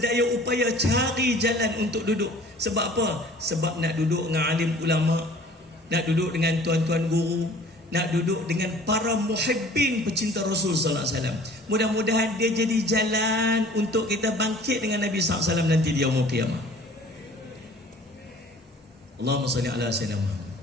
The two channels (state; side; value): normal; both; correlation 0.49